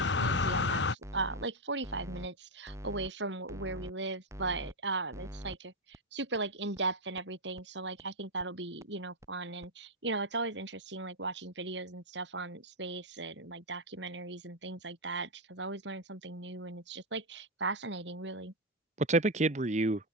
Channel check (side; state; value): both; normal; correlation 0.03